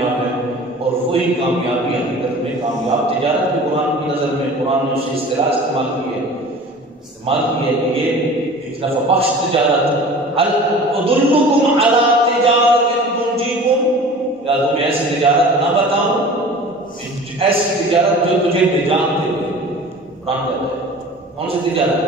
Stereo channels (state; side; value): normal; both; correlation 0.41